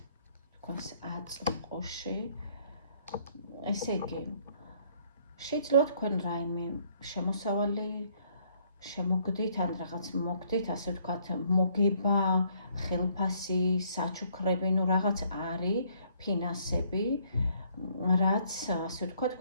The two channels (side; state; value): both; inverted; correlation -0.65